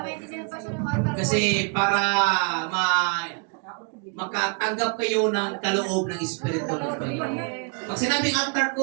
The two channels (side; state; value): left; quieter; 33.6 dB